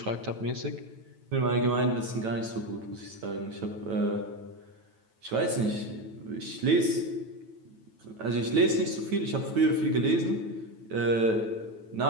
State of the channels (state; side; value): late; left; 9.2 ms